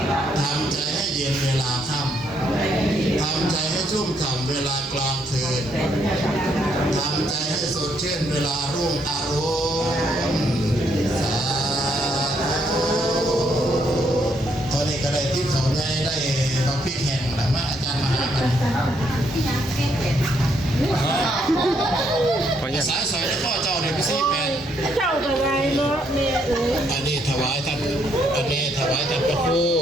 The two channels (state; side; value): normal; both; correlation 0.73